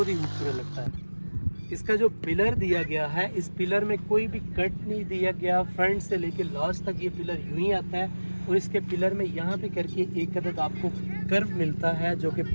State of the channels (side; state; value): both; inverted; correlation -1.00